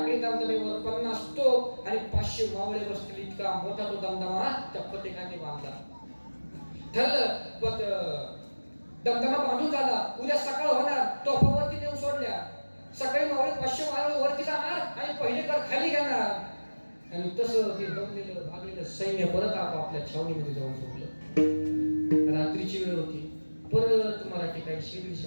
दमदमेवर 50 तोफ आणि 500 मावळे बसतील इतका मोठा तो दमदमा त्या फतेह खानाने बांधला. ठरलं दमदमा बांधून झाला, उद्या सकाळ होणार, तोफावरती नेऊन सोडल्या. सकाळी मावळे 500 मावळे वरती जाणार आणि पहिले तर खाली घेणार. आणि तसं ते दमलेलं भागलेलं सैन्य परत आपापल्या छावणीमध्ये जाऊन झोपलं. रात्रीची वेळ होती. परत मराठी काही 100-150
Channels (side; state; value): both; inverted; correlation -1.00